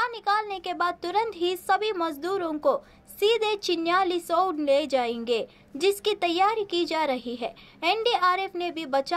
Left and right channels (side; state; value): both; identical; correlation 1.00